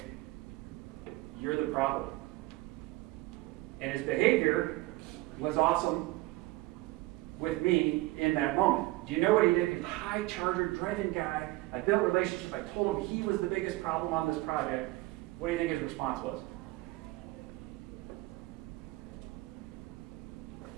you're the problem. And his behavior was awesome with me in that moment. Do you know what he did? He's a high charger, driven guy. I built relationships. I told him he was the biggest problem on this project. What do you think his response was?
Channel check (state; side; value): quieter; left; 19.8 dB